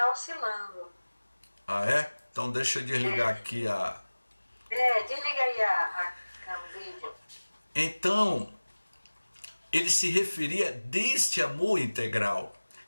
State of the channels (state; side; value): inverted; both; correlation -1.00